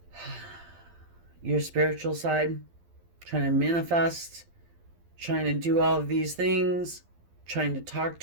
your spiritual side, trying to manifest, trying to do all of these things, trying to talk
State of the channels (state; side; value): late; left; 12 ms